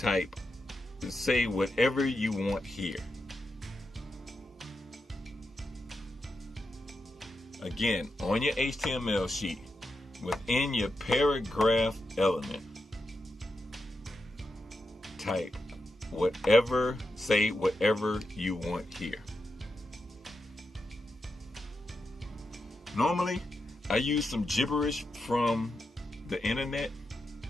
say whatever you want here. Again, on your HTML sheet, within your paragraph element, type whatever, say whatever you want here. Normally, I use some gibberish from the internet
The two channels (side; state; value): both; normal; correlation 0.87